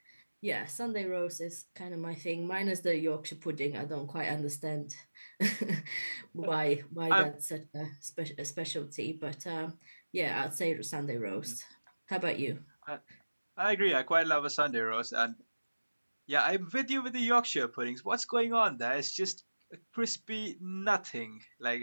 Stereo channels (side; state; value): both; inverted; correlation -1.00